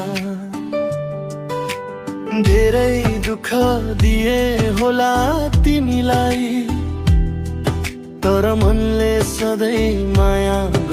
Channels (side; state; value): both; identical; correlation 1.00